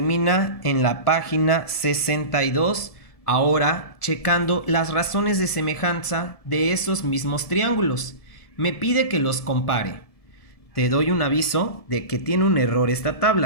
en la página 62, ahora checando las razones de semejanza de esos mismos triángulos. Me pide que los compare. Te doy un aviso de que tiene un error esta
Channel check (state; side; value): late; right; 1.7 ms